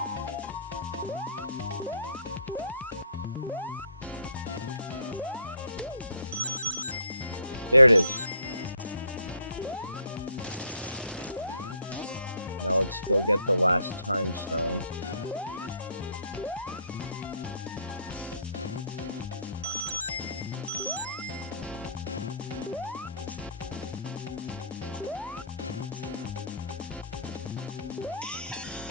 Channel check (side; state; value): both; inverted; correlation -0.59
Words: There it is. Now let's go get the last time stone.